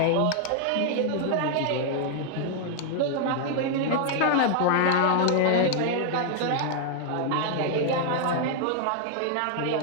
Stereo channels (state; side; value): different; both; correlation 0.00